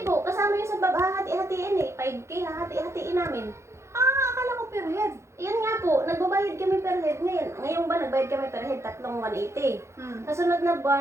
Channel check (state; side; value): late; left; 0.13 ms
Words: po, kasama yun sa hahati-hatiin eh. 5K, hahati-hatiin namin. Akala ko per head. Yan nga po, nagbabayad kami per head ngayon. Ngayong ba nagbayad kami per head, 3,180. Sa sunod na